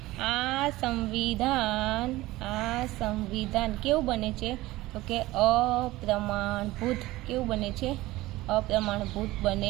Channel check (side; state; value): left; quieter; 18.2 dB